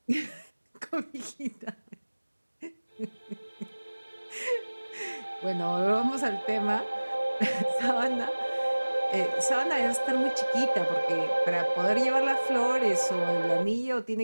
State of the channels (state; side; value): inverted; both; correlation -1.00